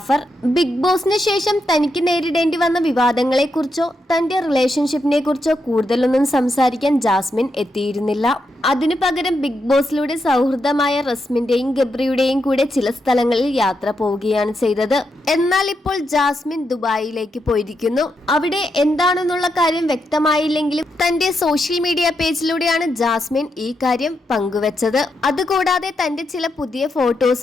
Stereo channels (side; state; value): both; normal; correlation 0.83